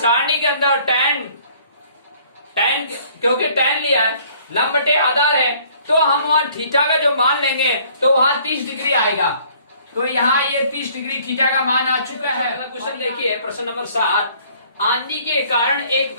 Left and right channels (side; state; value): both; inverted; correlation -0.58